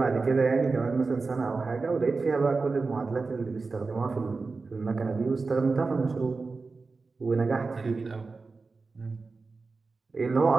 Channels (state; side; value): quieter; left; 4.1 dB